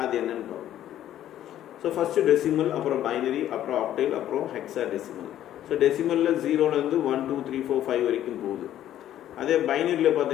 அது என்னன்னு பார்ப்போம். ஸோ ஃபஸ்ட்டு டெசிமல், அப்புறம் பைனரி, அப்புறம் ஆக்டேல், அப்புறம் ஹெக்ஸாடெசிமல். ஸோ டெசிமலில் 0லேருந்து 1, 2, 3, 4, 5 வரைக்கும் போகுது. அதே பைனரியில்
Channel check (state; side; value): quieter; right; 11.9 dB